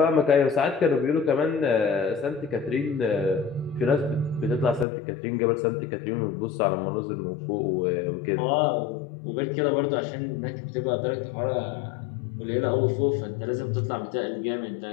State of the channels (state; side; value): drops out; right; at 4.9 s